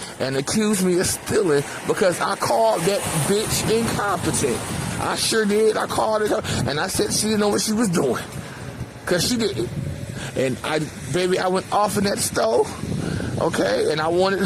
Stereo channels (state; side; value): identical; both; correlation 1.00